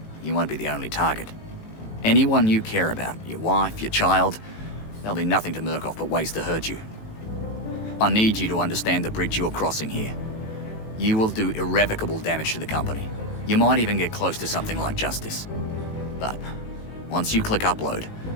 You won't be the only target. Anyone you care about, your wife, your child, there'll be nothing to Murkoff but ways to hurt you. I need you to understand the bridge you're crossing here. You will do irrevocable damage to the company. You might even get close to something like justice. But once you click upload,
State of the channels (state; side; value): late; right; 18 ms